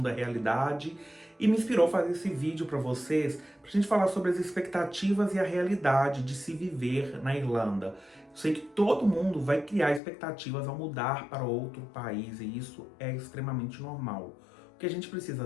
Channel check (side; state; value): right; drops out; at 10.0 s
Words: da realidade, e me inspirou a fazer esse vídeo para vocês, para a gente falar sobre as expectativas e a realidade de se viver na Irlanda. Eu sei que todo mundo vai criar expectativas ao mudar para outro país, e isso é extremamente normal. O que a gente precisa